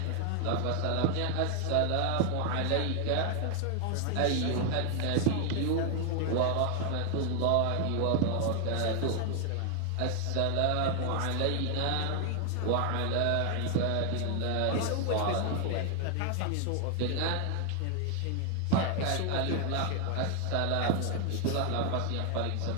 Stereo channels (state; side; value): different; both; correlation 0.00